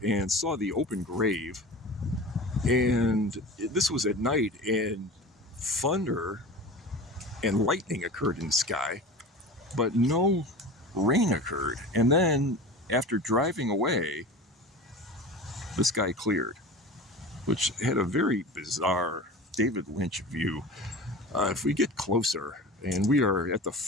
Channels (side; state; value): both; normal; correlation 0.34